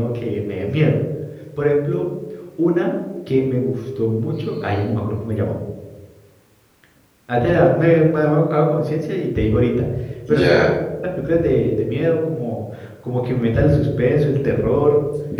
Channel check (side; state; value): both; identical; correlation 1.00